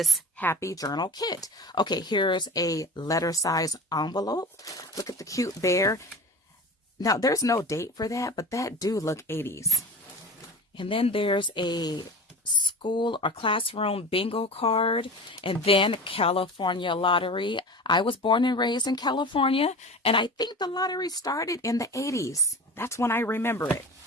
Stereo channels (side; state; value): both; normal; correlation 0.35